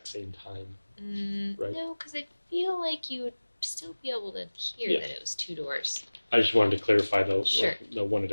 same time. Right. No, because I feel like you would still be able to hear Yeah. that it was two doors. I just wanted to clarify the Sure. one at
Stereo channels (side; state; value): both; inverted; correlation -1.00